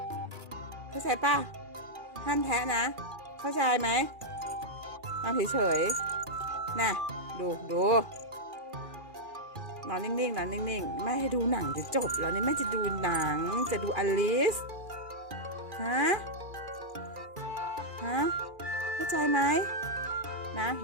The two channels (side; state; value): left; late; 2.4 ms